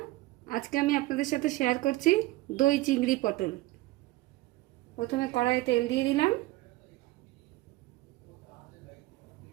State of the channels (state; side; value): quieter; left; 18.7 dB